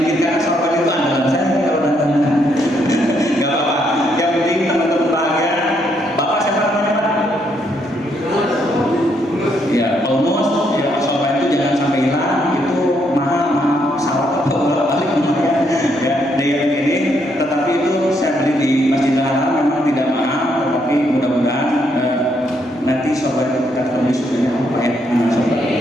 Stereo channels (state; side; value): normal; both; correlation 0.74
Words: karena sorban itu andalan saya kalau ganteng. Nggak apa-apa. Yang penting teman-teman bahagia. Bapak siapa namanya Pak? Ya, almost. Ya, sorban itu jangan sampai hilang. Itu mahal pesawat atau balik lumayan. Ya, yang ini. Tetapi itu saya beli di Masjidil Haram, memang tidak mahal, tetapi mudah-mudahan nanti sorban itu kita ketemu sebenarnya apa ya?